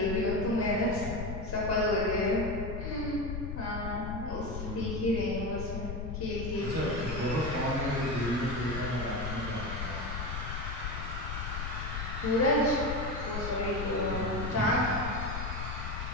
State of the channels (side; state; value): left; noise; rumble, 4 dB below the sound